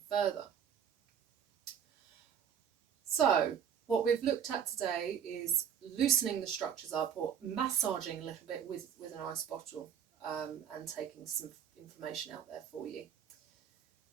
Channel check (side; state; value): left; quieter; 8.3 dB